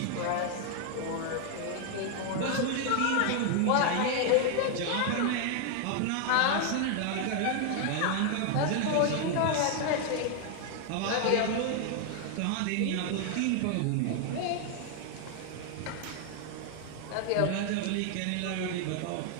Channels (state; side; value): different; both; correlation 0.00